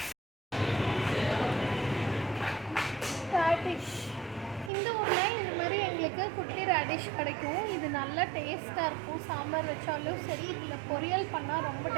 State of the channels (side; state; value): left; drops out; at 4.7 s